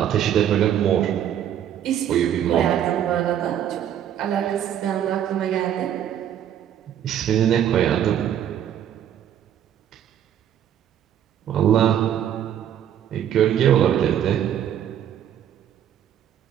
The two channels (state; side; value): quieter; left; 10.0 dB